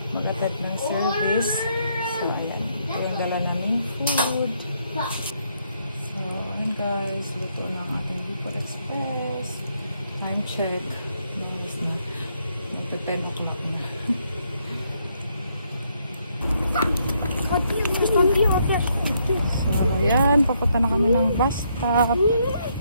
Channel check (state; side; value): inverted; both; correlation -0.74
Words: mag-attend ng service. So, ayan. Ito yung dala naming food. So, ayan guys. Luto ng ating Bicol Express. Time check. Noise na. Ito 10 o'clock na. So, ayan, papunta na kami ng bus stop.